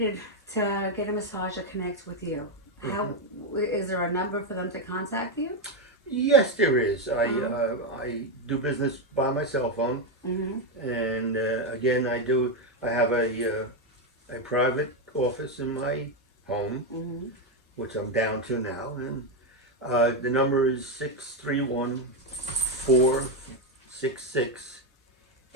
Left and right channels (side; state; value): both; normal; correlation 0.07